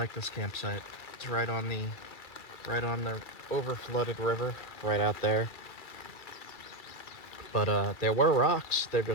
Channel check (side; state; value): right; late; 2.3 ms